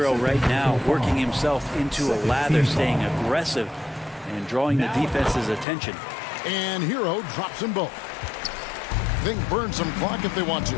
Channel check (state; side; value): drops out; right; at 5.7 s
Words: right now working himself into a lather, staying aggressive and drawing the defense's attention. And Hero drops them both. They can burn some clock if they want to.